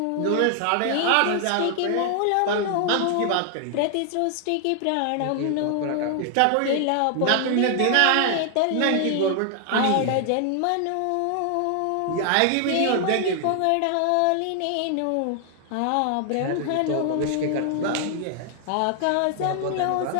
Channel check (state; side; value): different; both; correlation 0.00